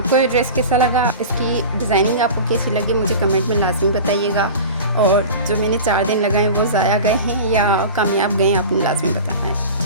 ये ड्रेस कैसा लगा, इसकी डिज़ाइनिंग आपको कैसी लगी, मुझे कमेंट में लाजमी बताइएगा। और जो मैंने 4 दिन लगाए वो ज़ाया गए हैं या कामयाब गए हैं, आपने लाजमी बताना है,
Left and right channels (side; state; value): both; inverted; correlation -0.34